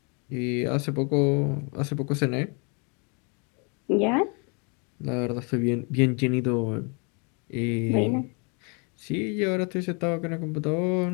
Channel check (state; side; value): quieter; right; 34.9 dB